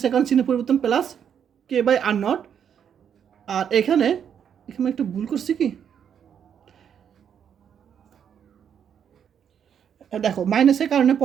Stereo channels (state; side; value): quieter; left; 8.3 dB